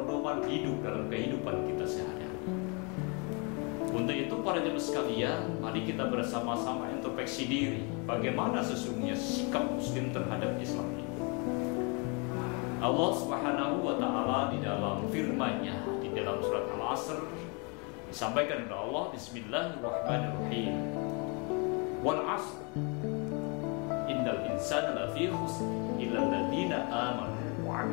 hidup dalam kehidupan kita sehari-hari. Untuk itu para jemaah sekalian, mari kita bersama-sama introspeksi diri, bagaimana sesungguhnya sikap muslim terhadap Islam ini. Allah Subhanahu wa taala di dalam firman-Nya di dalam surat Al-Asr disampaikan oleh Allah, Bismillahirrahmanirrahim. Wal 'asr innal insana lafi khusr illa alladziina aamanu wa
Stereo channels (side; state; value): right; quieter; 33.0 dB